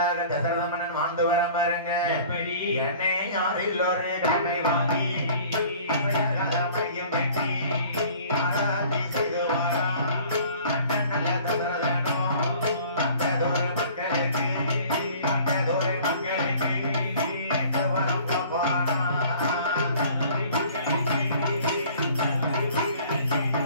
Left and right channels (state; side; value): inverted; both; correlation -0.49